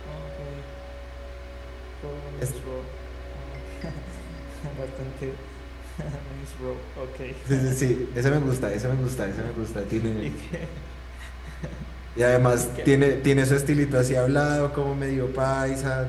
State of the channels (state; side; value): identical; both; correlation 1.00